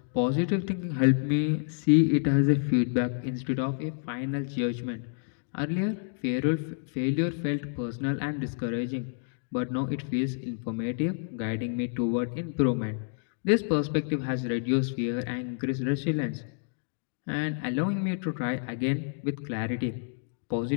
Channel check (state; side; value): silent; right; digital silence